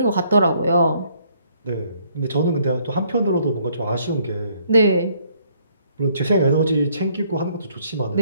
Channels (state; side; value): inverted; both; correlation -0.66